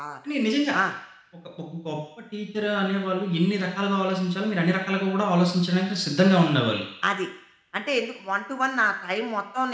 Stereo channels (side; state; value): both; identical; correlation 1.00